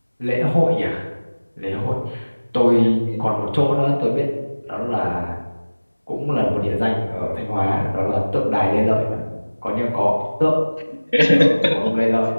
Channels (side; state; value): both; inverted; correlation -1.00